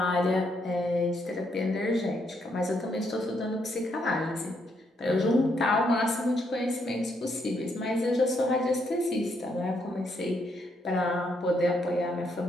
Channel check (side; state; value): both; normal; correlation 0.75